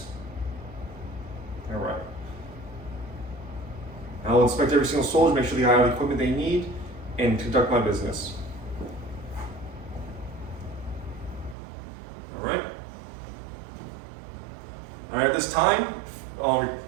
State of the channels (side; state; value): left; drops out; at 11.6 s